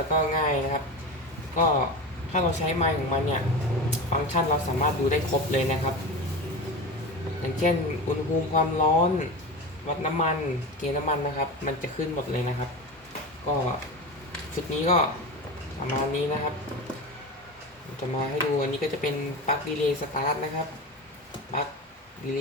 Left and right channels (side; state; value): both; normal; correlation 0.27